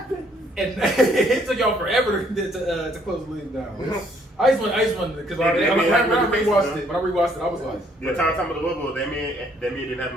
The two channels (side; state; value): both; normal; correlation 0.66